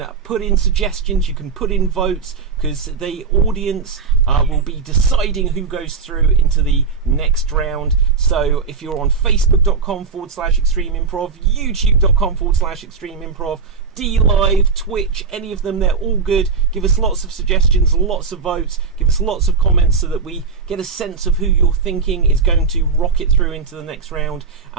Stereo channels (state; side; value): quieter; left; 5.0 dB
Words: put in suggestions, you can put in votes, because the audience will be deciding who goes through into the next round. So if you're on facebook.com/extreme improv, youtube.com/extreme improv, DLive, Twitch, any of them, they're all good. Give us lots of suggestions, lots of votes, give us lots of comments so that we get a sense of who you're thinking is going to rocket through into the next round,